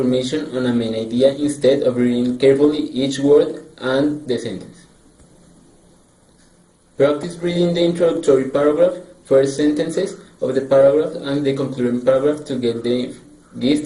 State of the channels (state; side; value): identical; both; correlation 1.00